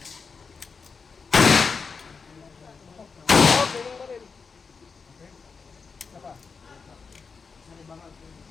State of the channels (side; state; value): right; quieter; 5.2 dB